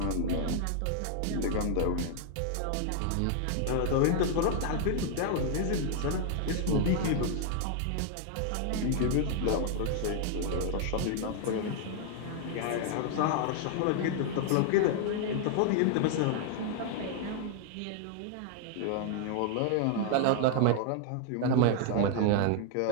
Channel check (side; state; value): both; different; correlation 0.00